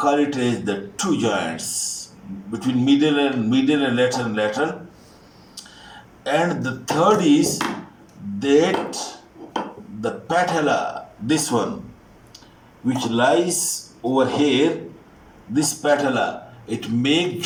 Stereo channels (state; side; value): identical; both; correlation 1.00